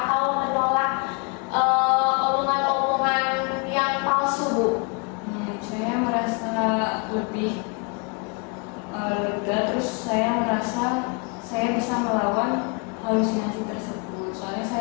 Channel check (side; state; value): right; quieter; 34.6 dB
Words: menolak omongan-omongan yang palsu Bu? Saya merasa lebih lega, terus saya merasa saya bisa melawan halusinasi tersebut. Soalnya